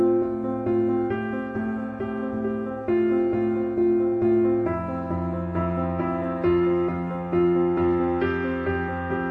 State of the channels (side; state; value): both; identical; correlation 1.00